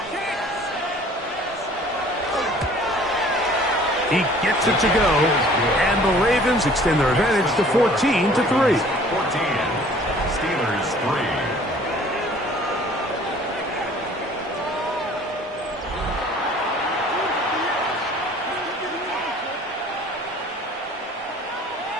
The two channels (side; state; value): both; normal; correlation 0.52